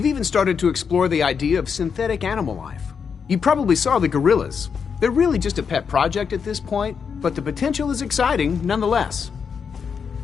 even started to explore the idea of synthetic animal life. You probably saw the gorillas. They're really just a pet project at this point, but the potential is exciting nonetheless.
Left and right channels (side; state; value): right; quieter; 6.4 dB